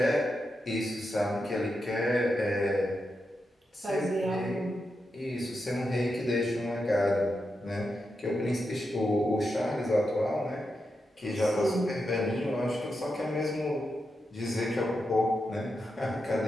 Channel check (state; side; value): normal; both; correlation 0.87